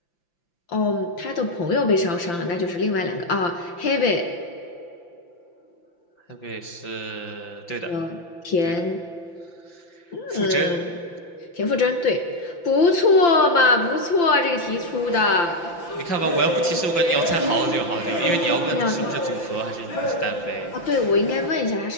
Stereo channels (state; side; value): late; right; 5.8 ms